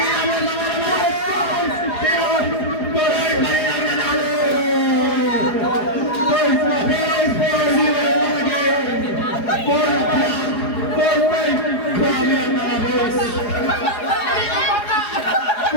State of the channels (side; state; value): right; late; 4.9 ms